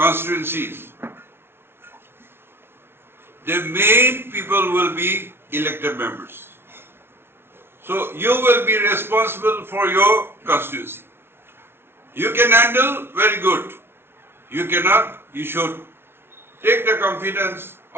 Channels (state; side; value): late; left; 0.12 ms